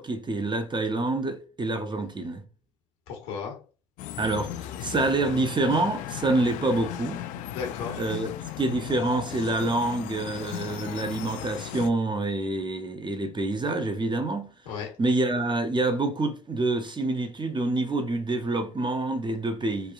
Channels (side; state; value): both; normal; correlation 0.58